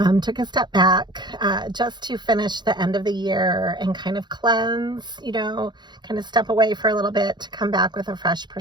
Took a step back just to finish the end of the year and kind of cleanse, kind of step away for a little bit to come back with a fresh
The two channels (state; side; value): late; left; 0.21 ms